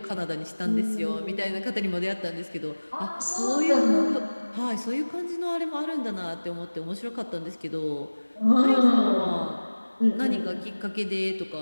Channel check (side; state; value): both; inverted; correlation -1.00